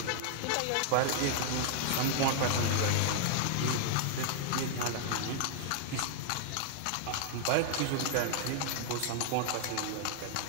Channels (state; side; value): different; both; correlation -0.01